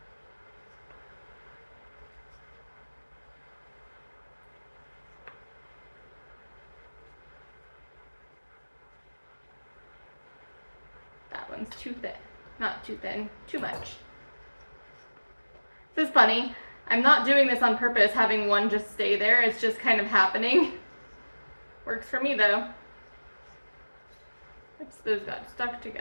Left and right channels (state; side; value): inverted; both; correlation -1.00